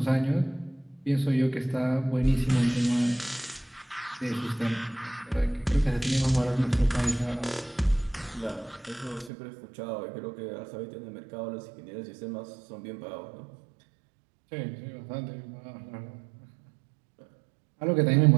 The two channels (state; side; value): drops out; left; at 9.3 s